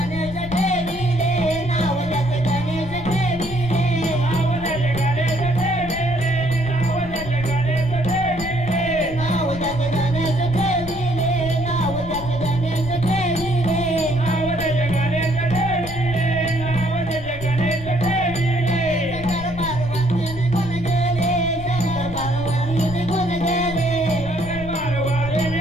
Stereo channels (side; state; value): left; noise; rumble, 11 dB below the sound